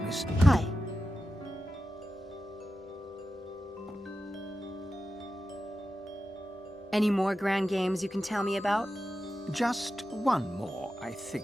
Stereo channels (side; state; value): both; normal; correlation 0.91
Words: Miss... Hi. Any more grand games you can tell me about? Just one more, I